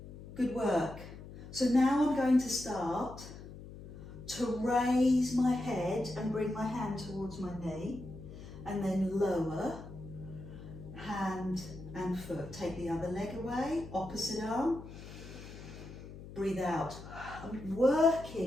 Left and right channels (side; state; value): left; noise; hum, 14 dB below the sound